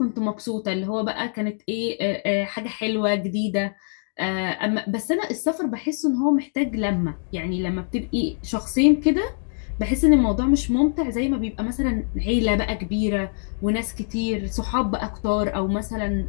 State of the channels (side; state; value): right; silent; digital silence